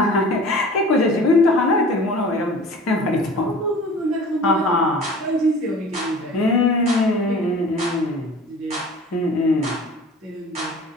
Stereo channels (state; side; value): normal; both; correlation 0.43